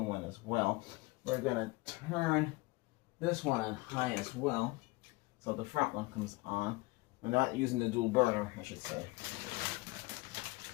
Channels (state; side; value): quieter; right; 23.2 dB